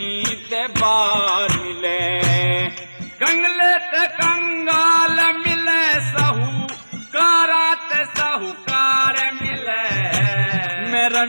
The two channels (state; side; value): inverted; both; correlation -1.00